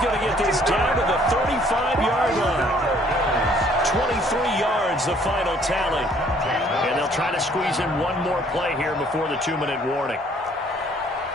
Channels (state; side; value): normal; both; correlation 0.60